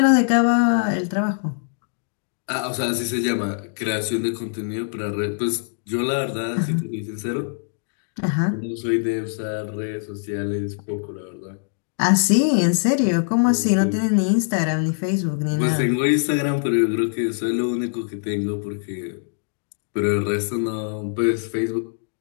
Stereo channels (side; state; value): right; silent; digital silence